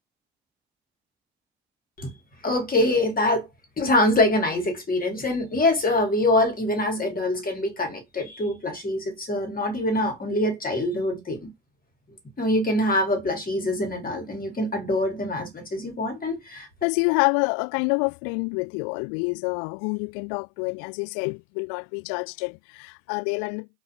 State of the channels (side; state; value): right; drops out; at 16.9 s